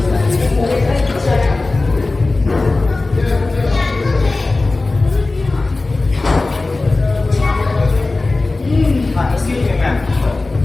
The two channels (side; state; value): right; quieter; 3.3 dB